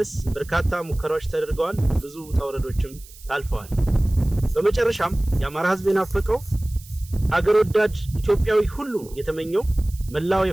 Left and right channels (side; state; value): right; noise; hiss, 21 dB below the sound